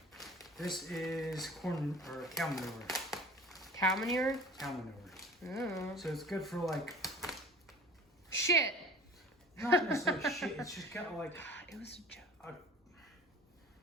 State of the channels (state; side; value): normal; both; correlation 0.43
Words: This is corn or cow manure. Cow manure? Cow manure. Oh. So it's good for like shit. Not necessarily shit. It's just kind of like it was a joke.